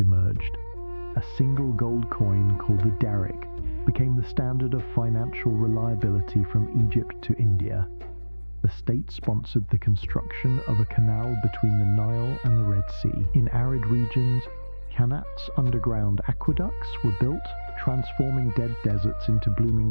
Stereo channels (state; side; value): inverted; both; correlation -1.00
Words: A single gold coin called the daric became the standard of financial reliability from Egypt to India. The state sponsored the construction of a canal between the Nile and the Red Sea. In arid regions, Qanat's underground aqueducts were built, transforming dead deserts into